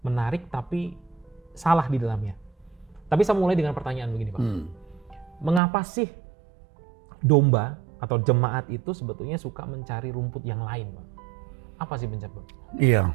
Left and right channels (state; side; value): drops out; left; at 5.6 s